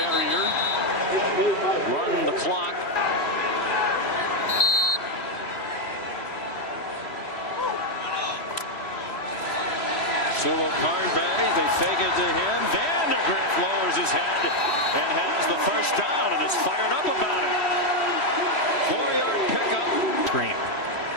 run the clock. Sumo Karngbe, they fake it to him. Vandegrift lowers his head and has the first down and is fired up about it. 4-yard pickup. Screen.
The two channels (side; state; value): right; late; 3.1 ms